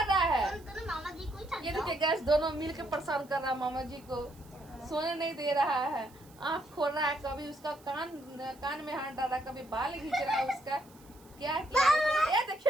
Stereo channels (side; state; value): right; noise; hiss, 26 dB below the sound